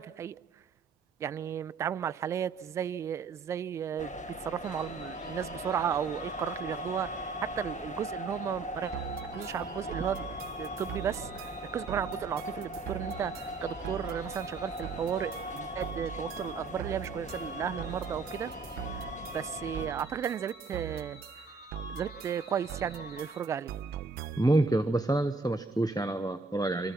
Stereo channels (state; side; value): quieter; left; 4.5 dB